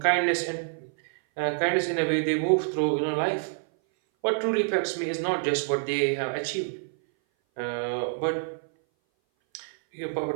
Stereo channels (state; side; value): silent; left; 58 dB below the other